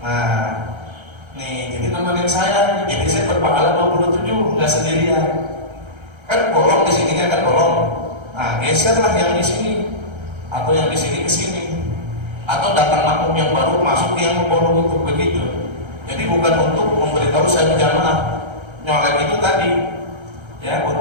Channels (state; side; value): late; left; 1.3 ms